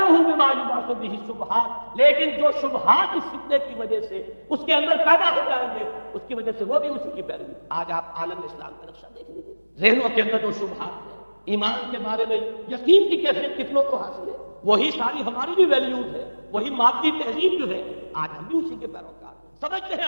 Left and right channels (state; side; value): inverted; both; correlation -1.00